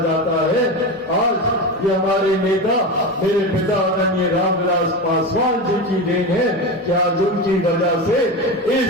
जाता है, आज ये हमारे नेता, मेरे पिता आदरणीय रामविलास पासवान जी की देन है कि आज उनकी वजह से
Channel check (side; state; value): both; normal; correlation 0.22